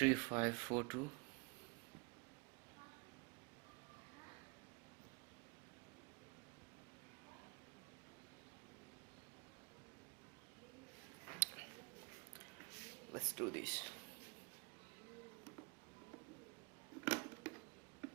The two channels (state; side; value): quieter; left; 30.2 dB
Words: Let's do this.